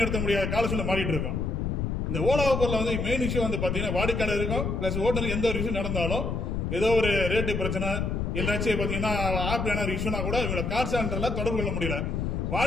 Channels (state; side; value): noise; left; rumble, 1 dB below the sound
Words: முடியாத கால சூழ்நிலை மாறிட்டு இருக்கோம். இந்த ஓலா ஊபர்ல வந்து மெயின் இஷ்யூ வந்து பாத்தீங்கன்னா வாடிக்கையாளர் இருக்கும் பிளஸ் ஓட்டுநர் எந்த ஒரு விஷயம் நடந்தாலும் ஏதோ ஒரு ரேட்டு பிரச்சனை இல்லாச்சும் பாத்தீங்கன்னா ஆப் என்ன ஒரு இஷ்யூனா கூட இவங்க கால் சென்டர்ல தொடர்பு கொள்ள முடியல.